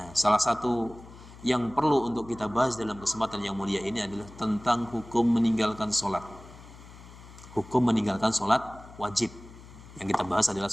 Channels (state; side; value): noise; left; hum, 19 dB below the sound